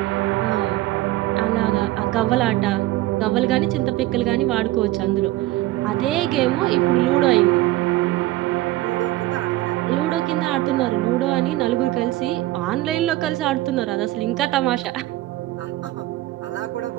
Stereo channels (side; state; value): left; quieter; 16.8 dB